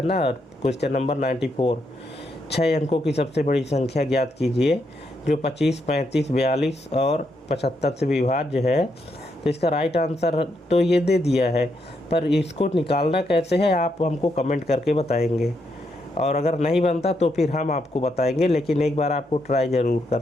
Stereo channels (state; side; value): normal; both; correlation 0.79